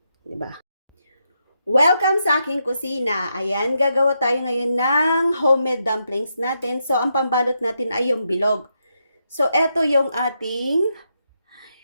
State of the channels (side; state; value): both; inverted; correlation -0.82